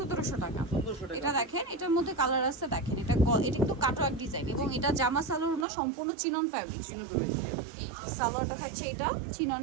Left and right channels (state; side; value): drops out; left; at 5.7 s